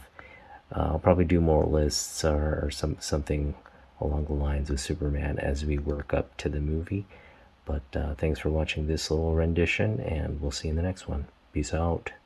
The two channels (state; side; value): identical; both; correlation 1.00